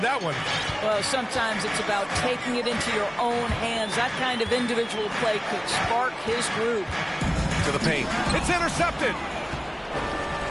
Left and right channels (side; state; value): both; identical; correlation 1.00